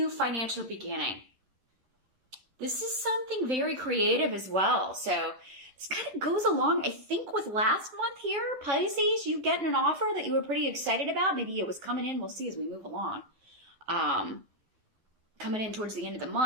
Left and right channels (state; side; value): late; left; 10 ms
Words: financial beginning. This is something very creative as well. So this kind of goes along, I think, with last month here, Pisces. You getting an offer that you were pretty excited about. Maybe it was coming in. We'll see as we move along. Coming in towards the end of the